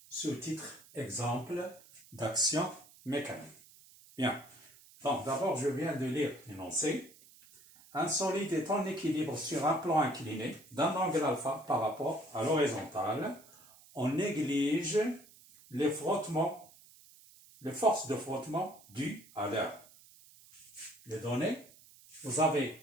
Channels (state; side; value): noise; right; hiss, 24 dB below the sound